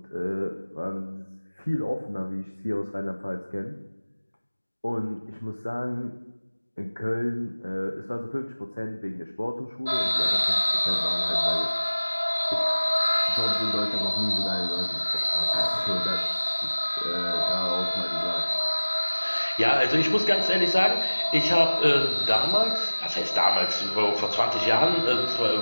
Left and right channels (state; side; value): inverted; both; correlation -1.00